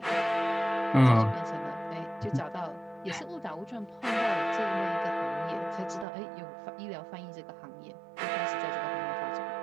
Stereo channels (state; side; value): drops out; left; at 6.1 s